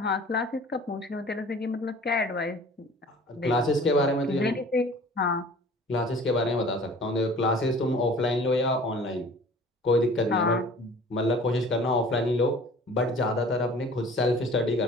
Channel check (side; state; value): both; normal; correlation 0.47